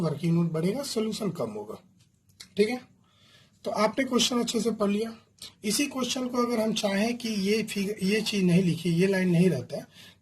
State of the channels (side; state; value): both; identical; correlation 1.00